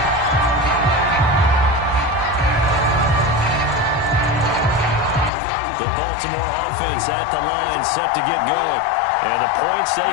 The Baltimore offense at the line, set to get going. And the points, they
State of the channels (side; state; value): right; drops out; at 5.3 s